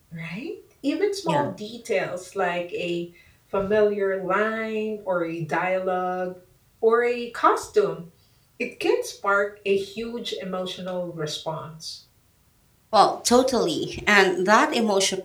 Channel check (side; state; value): both; identical; correlation 1.00